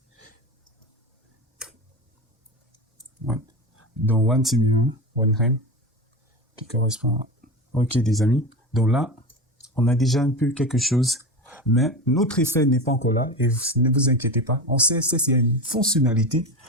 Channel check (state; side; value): normal; both; correlation 0.23